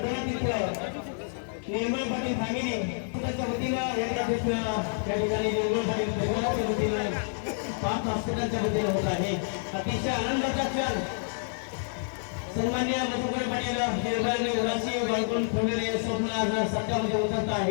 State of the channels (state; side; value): silent; right; 59 dB below the other